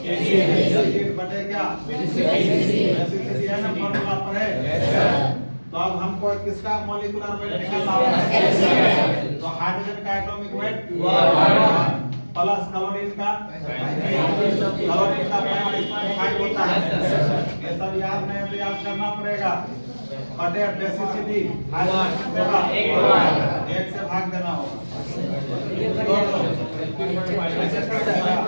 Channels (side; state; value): both; inverted; correlation -1.00